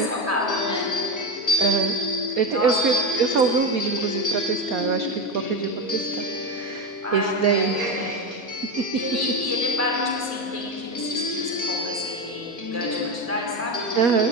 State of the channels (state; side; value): normal; both; correlation 0.17